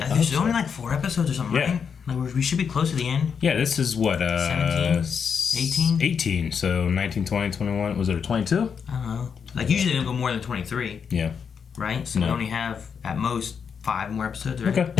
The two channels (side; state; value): right; quieter; 6.6 dB